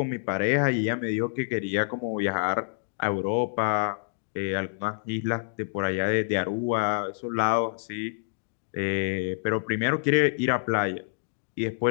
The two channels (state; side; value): silent; right; digital silence